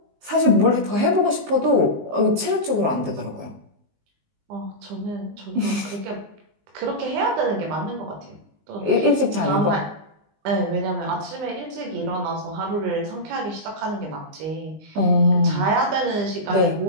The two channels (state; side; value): late; left; 19 ms